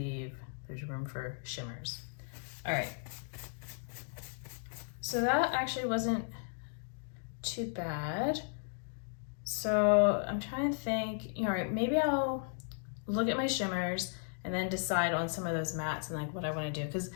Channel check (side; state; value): right; silent; digital silence